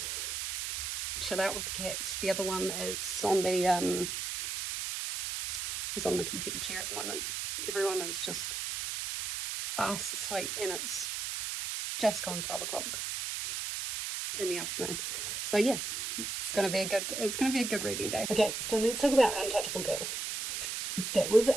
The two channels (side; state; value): right; noise; hiss, 3 dB below the sound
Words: chill out with the cats. The other one is on the computer chair at the moment. Everyone is just fast asleep, and it's just gone 12 o'clock in the afternoon. So yeah, it's gonna be a good reading day. Okay, so let's talk about Untouchable Girls. That was